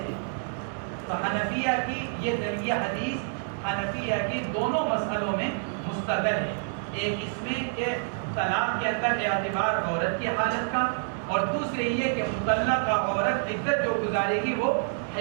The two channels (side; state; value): left; silent; 59 dB below the other